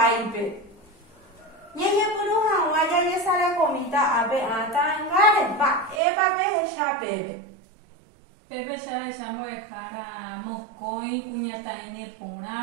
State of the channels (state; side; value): drops out; left; at 6.0 s